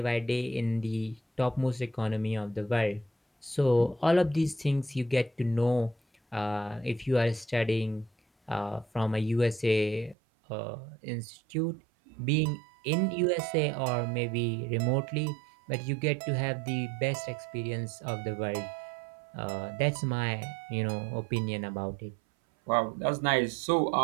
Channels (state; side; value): drops out; left; at 10.2 s